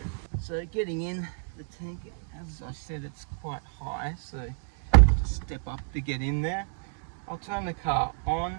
So getting in the tank, as I said, it's quite high, so just step up to get in there. I'll turn the car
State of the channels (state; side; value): silent; left; digital silence